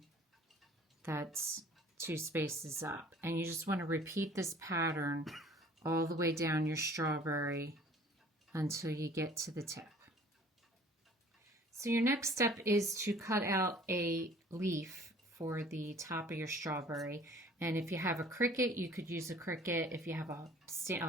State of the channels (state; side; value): normal; both; correlation 0.51